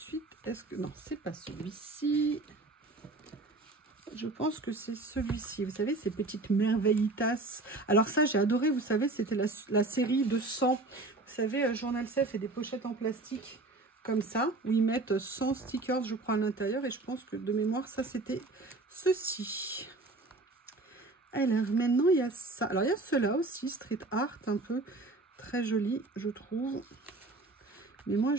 Est-ce que... Non, c'est pas celui-ci. Je pense que c'est celui-ci. Vous savez, ces petites merveillitas. Alors ça, j'ai adoré. Vous savez, c'était la série de 100. Vous savez, Journal C fait des pochettes en plastique comme ça, où ils mettent 100 stickers, je crois, à l'intérieur. Et je pense que de mémoire, ça, c'était ceci. Alors, maintenant, il y a ça. Alors, il y a cela aussi, street art, un peu très joli, je trouve. Mais moi,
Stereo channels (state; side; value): quieter; left; 3.1 dB